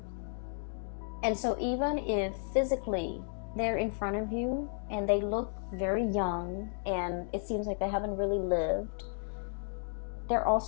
And so even if physically they're in front of you and they look very young and it seems like they haven't really lived, they're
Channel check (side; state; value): right; silent; digital silence